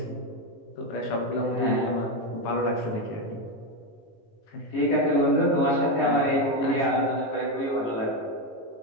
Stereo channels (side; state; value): right; late; 18 ms